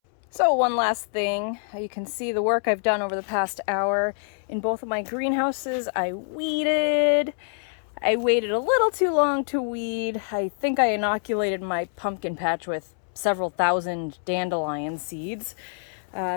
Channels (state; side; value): silent; right; 61 dB below the other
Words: So one last thing, you can see the work I've done over the past hour. In both of my greenhouses, I weeded. I waited a little too long to weed. I think I inoculated my pumpkin patch with several thousand dandelion seeds.